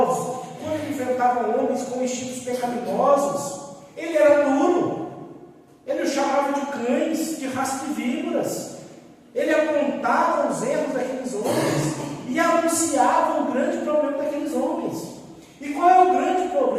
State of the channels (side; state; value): both; identical; correlation 1.00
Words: quando ele enfrentava homens com instintos pecaminosos, ele era duro. Ele os chamava de cães, de raça de víboras. Ele apontava os erros daqueles homens e anunciava o grande problema daqueles homens. E qual é o grande